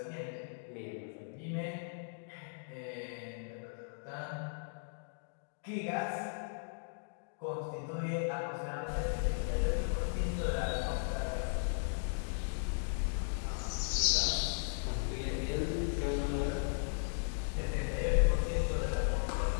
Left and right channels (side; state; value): right; silent; digital silence